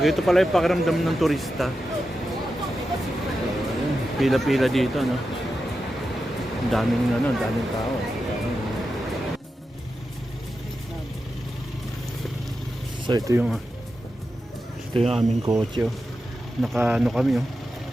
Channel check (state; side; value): normal; both; correlation 0.90